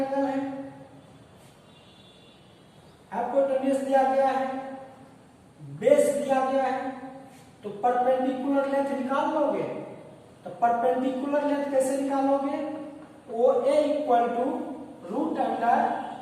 है, हाइपोटेन्यूज दिया गया है, बेस दिया गया है, तो परपेंडिकुलर लेंथ निकाल लोगे। तो परपेंडिकुलर लेंथ कैसे निकालोगे? O A equal to root under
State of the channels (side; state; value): both; identical; correlation 1.00